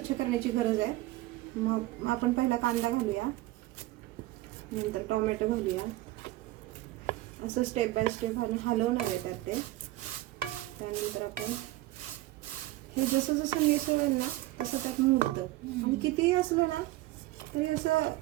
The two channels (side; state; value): left; quieter; 17.5 dB